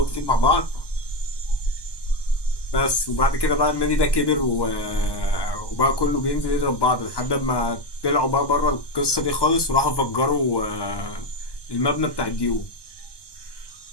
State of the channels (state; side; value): late; right; 1.1 ms